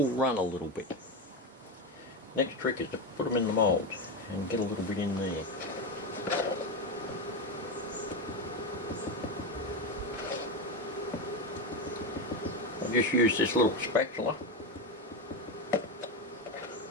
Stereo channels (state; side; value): normal; both; correlation 0.15